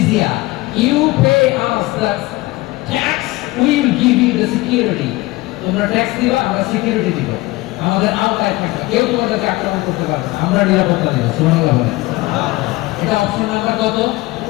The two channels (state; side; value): quieter; right; 20.2 dB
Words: You pay us the tax, we will give you the security. তোমরা ট্যাক্স দিবা, আমরা সিকিউরিটি দিব, আমাদের আওতায় থাকবে, কেউ তোমাদেরকে আক্রমণ করতে পারবে না, আমরা নিরাপত্তা দিব। সুবহানাল্লাহ বলেন। এটা অপশন নাম্বার কত?